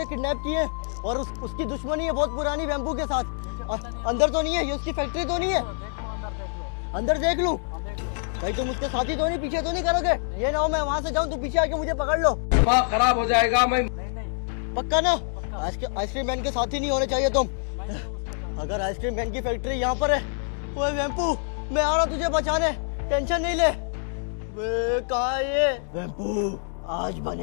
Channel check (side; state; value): right; silent; digital silence